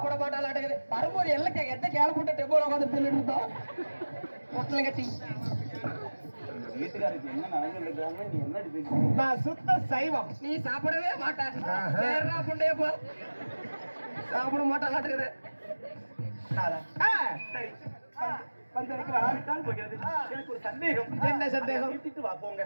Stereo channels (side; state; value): both; inverted; correlation -1.00